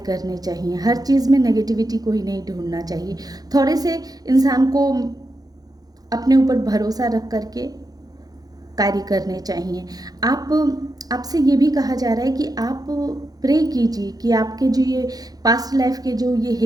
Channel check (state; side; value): late; left; 0.19 ms